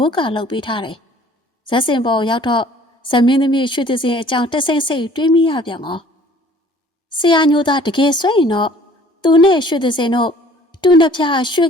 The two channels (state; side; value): normal; both; correlation 0.53